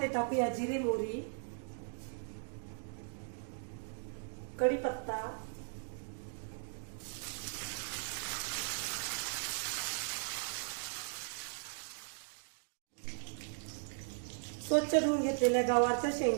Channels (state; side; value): silent; left; digital silence